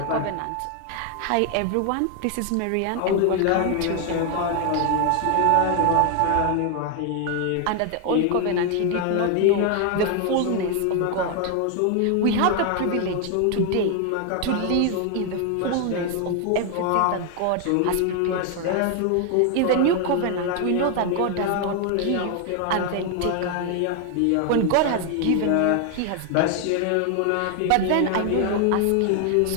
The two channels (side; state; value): both; different; correlation 0.00